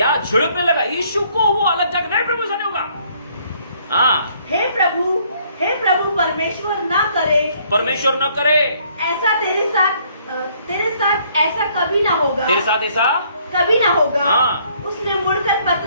छिड़कने लगा? यीशु को वो अलग जाकर, नहीं प्रभु ऐसा नहीं होगा। हाँ, हे प्रभु परमेश्वर ना करे, परमेश्वर न करे ऐसा तेरे साथ ऐसा कभी ना होगा, तेरे साथ ऐसा कभी ना होगा। हाँ। उसने मुड़कर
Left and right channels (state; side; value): inverted; both; correlation -0.64